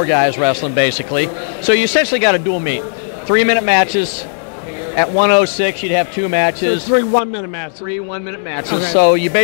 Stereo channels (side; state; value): right; silent; digital silence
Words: guys wrestling, basically. So you essentially got a dual meet. 3-minute matches. At 106, you'd have 2 matches. So 3 1-minute matches. 3 1-minute matches. Okay. So you